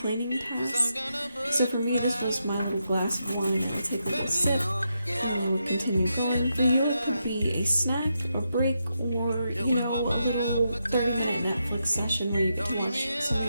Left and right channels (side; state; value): both; inverted; correlation -0.84